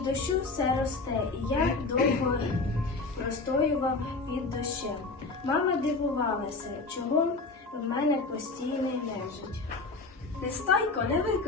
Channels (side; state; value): right; quieter; 3.7 dB